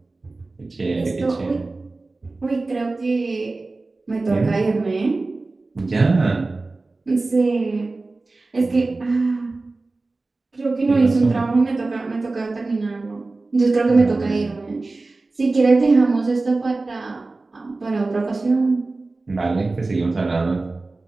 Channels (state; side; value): quieter; left; 3.4 dB